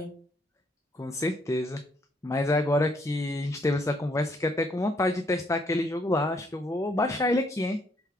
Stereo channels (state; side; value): normal; both; correlation 0.70